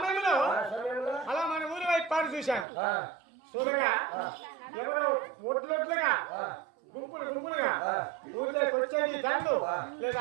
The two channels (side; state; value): left; drops out; at 2.7 s